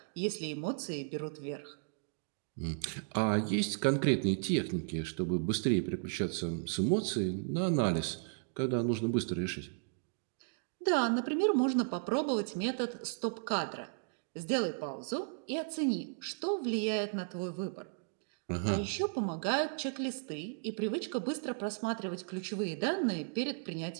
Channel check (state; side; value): silent; left; digital silence